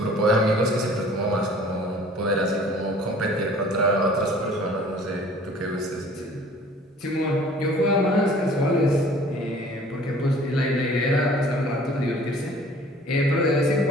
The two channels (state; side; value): normal; both; correlation 0.50